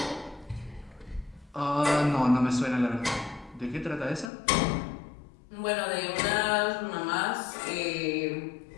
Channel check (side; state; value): right; drops out; at 4.3 s